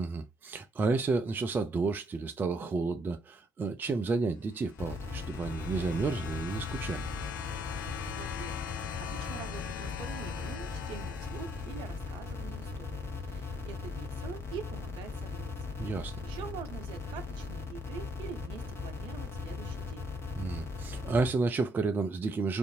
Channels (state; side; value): normal; both; correlation 0.71